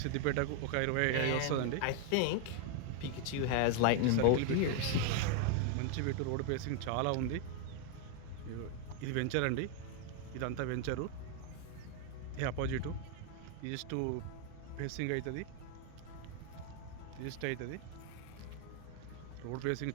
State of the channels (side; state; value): both; different; correlation 0.00